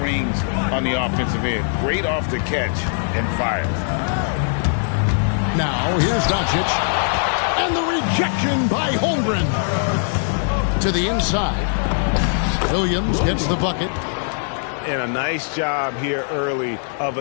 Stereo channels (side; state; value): right; silent; digital silence